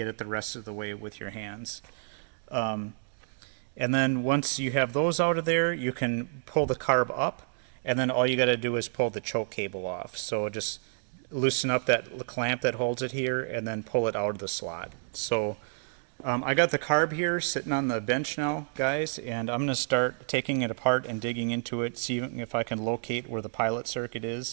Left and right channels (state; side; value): silent; left; digital silence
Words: it the rest of the way with your hands. And then once you have those out of there, you can pull the carb up, and then all you got to do is pull the choke cable off. So just loosen up that clamp that holds it here, and then pull it out of the slot. So I got the carb here sitting on the bench now, guys, and I'm going to start taking it apart and digging into it, seeing if I can locate where the pilot circuit